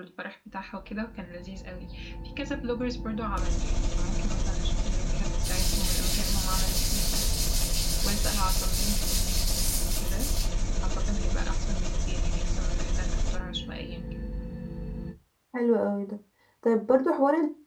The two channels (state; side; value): identical; both; correlation 1.00